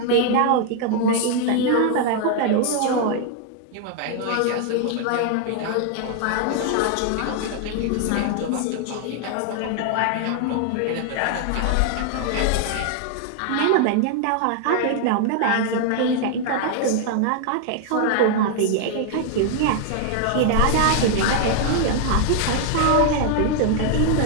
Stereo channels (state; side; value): different; both; correlation 0.00